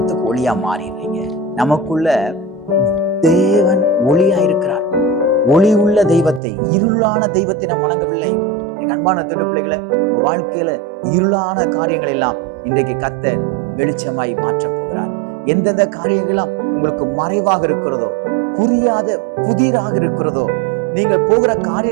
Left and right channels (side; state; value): left; drops out; at 6.4 s